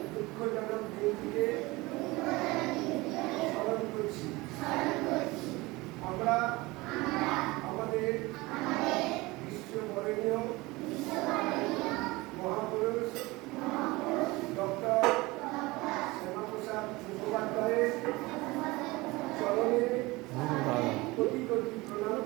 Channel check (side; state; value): left; quieter; 22.0 dB